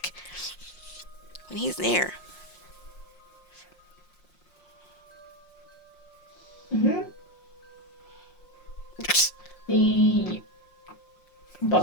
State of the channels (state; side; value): late; right; 5.6 ms